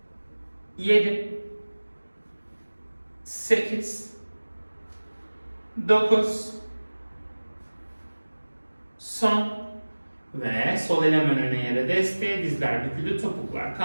7, 8, 9, son. Ve sol el hemen öne yere desteğe, dizler büküldü, topuklar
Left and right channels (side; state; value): both; inverted; correlation -1.00